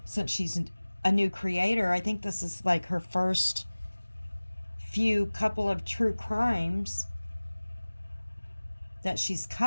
since she's a new creator, I think this is like her first few couple of true crimes that she's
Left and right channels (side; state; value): both; inverted; correlation -1.00